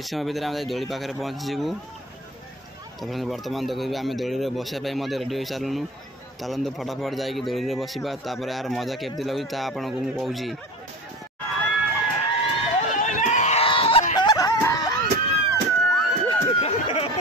समय भितर आम दोली पाखे पहुँचीबू। तो फ्रेंड्स बर्तमान देखिए आम दोली बसापी रेडी हो सारूँ। चलते फटाफट जाकि दोली बसवा तापर यार मजा केमती लगुच आपको मुझे कहूँ।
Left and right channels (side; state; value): both; normal; correlation 0.33